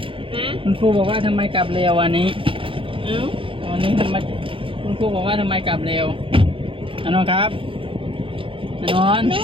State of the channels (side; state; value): left; late; 0.25 ms